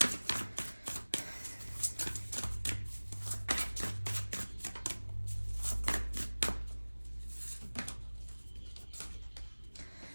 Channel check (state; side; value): inverted; both; correlation -1.00